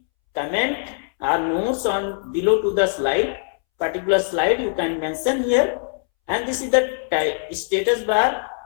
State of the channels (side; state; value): right; silent; 64 dB below the other